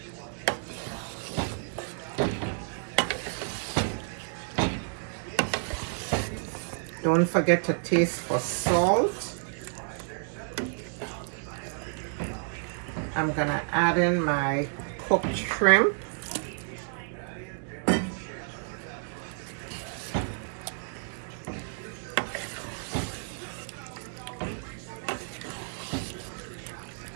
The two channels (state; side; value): silent; left; 57 dB below the other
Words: Don't forget to taste for salt. I'm gonna add in my cooked shrimp.